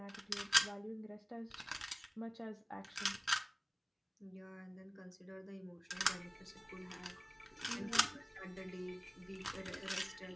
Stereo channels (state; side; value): identical; both; correlation 1.00